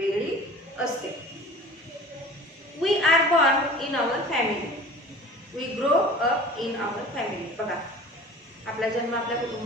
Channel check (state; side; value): normal; both; correlation 0.41